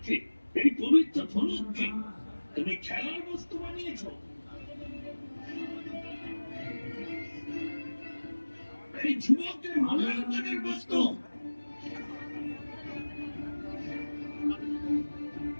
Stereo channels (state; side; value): inverted; both; correlation -1.00